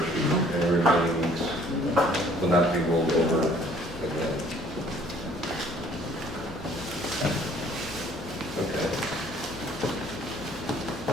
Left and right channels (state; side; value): noise; right; rumble, 22 dB below the sound